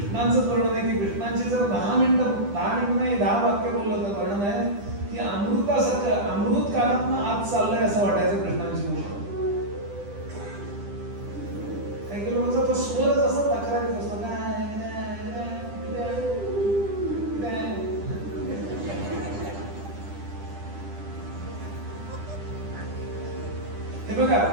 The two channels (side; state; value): left; late; 10 ms